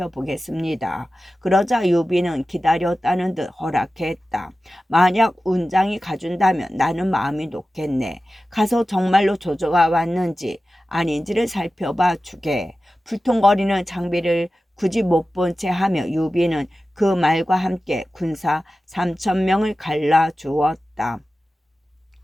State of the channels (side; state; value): both; normal; correlation 0.95